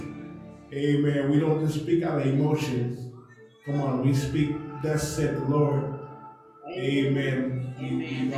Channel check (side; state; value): both; identical; correlation 1.00